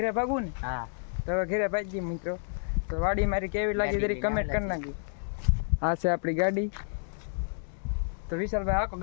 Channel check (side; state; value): right; silent; digital silence